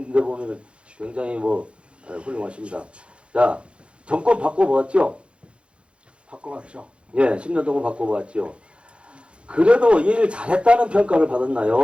데 보면 굉장히 훌륭하십니다. 자, 정권 바꿔보았죠? 바꿔봤죠. 예, 10년 동안 바꿔보았죠. 그래도 일 잘했다는 평가를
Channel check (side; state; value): left; late; 0.058 ms